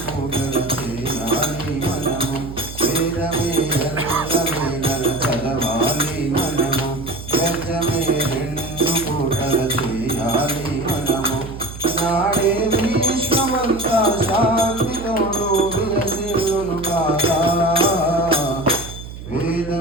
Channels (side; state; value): right; noise; hum, 12 dB below the sound